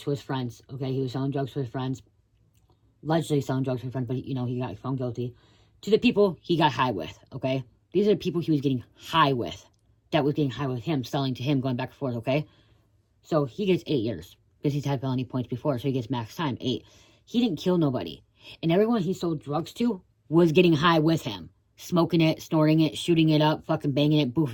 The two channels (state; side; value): identical; both; correlation 1.00